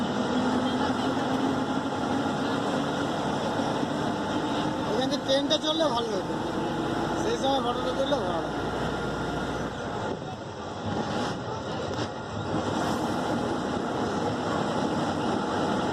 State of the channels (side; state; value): both; identical; correlation 1.00